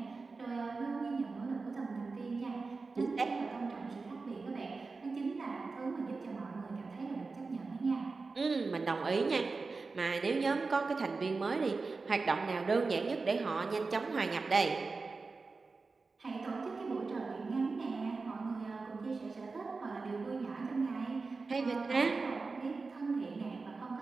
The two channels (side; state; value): left; quieter; 4.1 dB